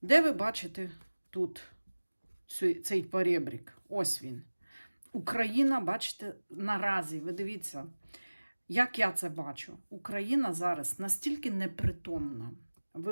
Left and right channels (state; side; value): inverted; both; correlation -1.00